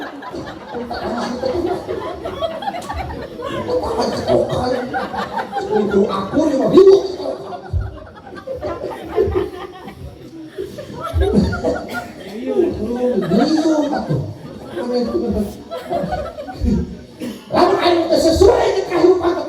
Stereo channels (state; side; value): identical; both; correlation 1.00